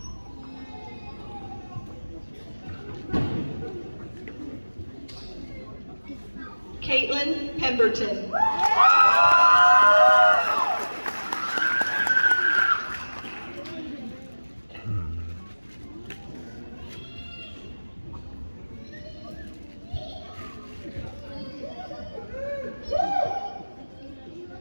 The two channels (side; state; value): both; inverted; correlation -1.00